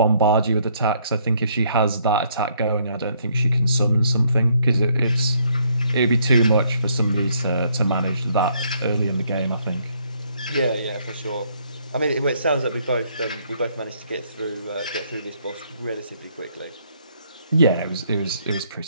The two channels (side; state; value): both; inverted; correlation -0.68